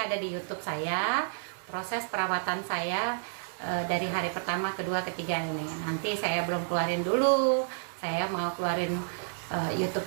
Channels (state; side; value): silent; left; 58 dB below the other